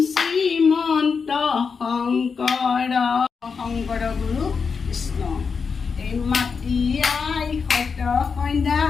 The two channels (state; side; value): quieter; right; 5.5 dB